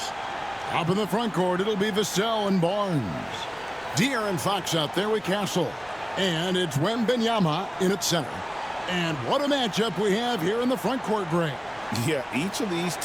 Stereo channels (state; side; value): noise; right; rumble, 28 dB below the sound